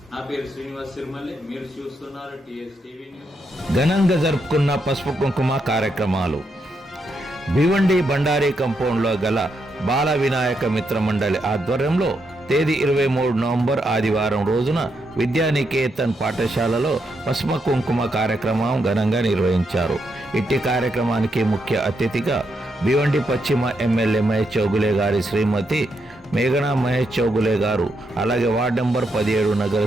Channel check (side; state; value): both; normal; correlation 0.80